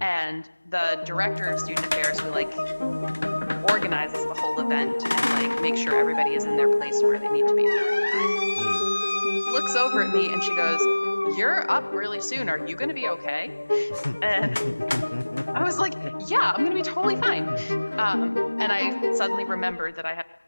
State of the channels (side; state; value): both; inverted; correlation -1.00